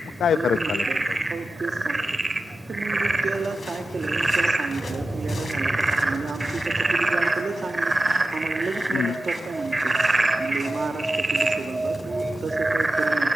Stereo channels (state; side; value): normal; both; correlation 0.93